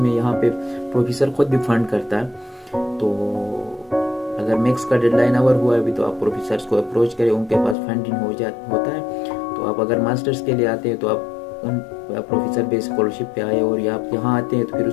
यहाँ पे प्रोफेसर खुद भी फंड करता है, तो अगर मैक्स का डेडलाइन अवर हुआ है अभी तो आप प्रोफेसर्स को अप्रोच करें, उनके पास फंडिंग होता है। तो आप अगर मास्टर्स के लिए आते हैं तो आप उन प्रोफेसर बेस्ड स्कॉलरशिप पे आए, और या आप यहाँ आते हैं तो फिर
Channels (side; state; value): right; drops out; at 7.8 s